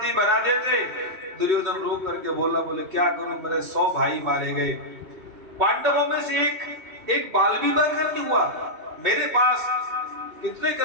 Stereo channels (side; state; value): left; late; 2.3 ms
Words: बना देते। दुर्योधन रो करके बोला, बोले क्या करूं, मेरे 100 भाई मारे गए, पांडवों में से एक बाल भी बगर नहीं हुआ। मेरे पास कितने